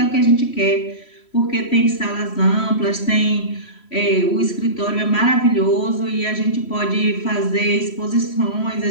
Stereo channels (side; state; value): right; late; 3.1 ms